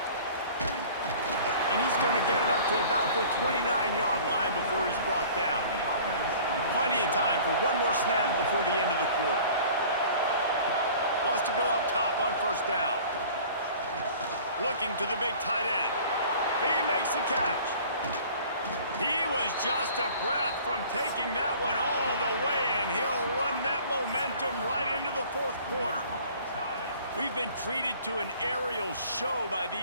And he's going to get it up to about the 29-yard line before he's brought down. Plenty of time for one more snap before the end of the quarter. Wants to go up top on first down. Looking to the big tight end. He makes the catch. He was just a breath from taking that one all the way, and he'll run that momentum right into the fourth quarter. We've been treated to an aerial show by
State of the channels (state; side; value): inverted; both; correlation -0.47